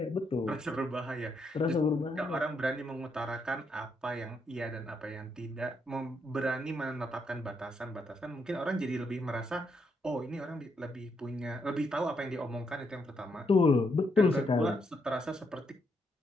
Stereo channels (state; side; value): normal; both; correlation 0.78